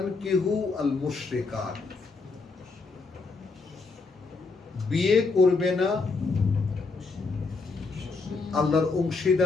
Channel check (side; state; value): right; quieter; 4.1 dB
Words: আল মুশরিকাত, বিয়ে করবে না আল্লাহর